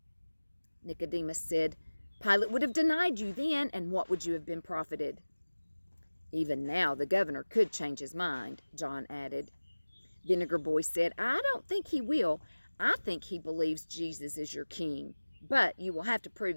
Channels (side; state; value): both; inverted; correlation -1.00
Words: Nicodemus said, "Pilate would have denied you then, and what would you have been profited?" "Even now the governor could change his mind," John added. Vinegar Boy said, "I don't think he will. I think he believes Jesus is your king. But you will have to